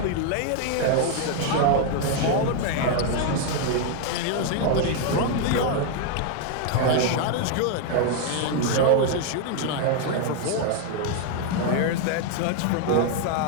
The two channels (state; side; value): different; both; correlation 0.00